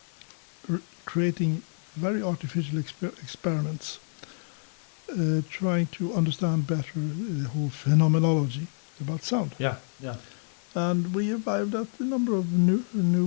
creating very artificial experiments, trying to understand better the whole phenomenology about sound. Yeah. Yeah. And we arrived at a number of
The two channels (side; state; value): right; silent; digital silence